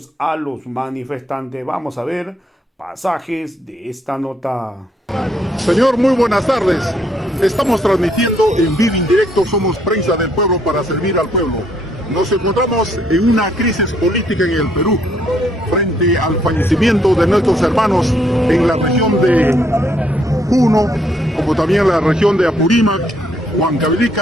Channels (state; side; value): normal; both; correlation 0.70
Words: a los manifestantes. Vamos a ver pasajes de esta nota. Señor, muy buenas tardes. Estamos transmitiendo en vivo en directo, somos prensa del pueblo para servir al pueblo. Nos encontramos en una crisis política en el Perú, frente al fallecimiento de nuestros hermanos en la región de Puno, como también en la región de Apurímac,